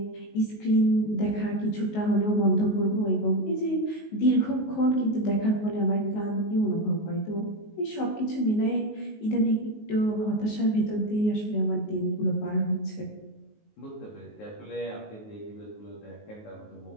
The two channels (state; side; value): late; right; 19 ms